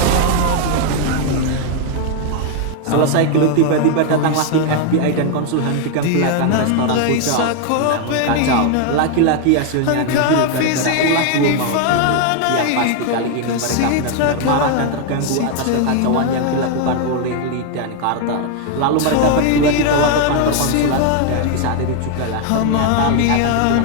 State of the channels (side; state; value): both; different; correlation 0.00